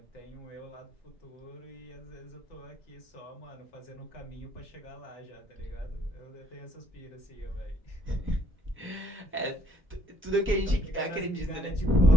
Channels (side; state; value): both; normal; correlation 0.66